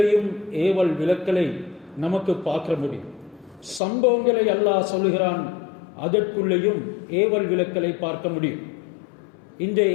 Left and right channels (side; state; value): right; drops out; at 3.8 s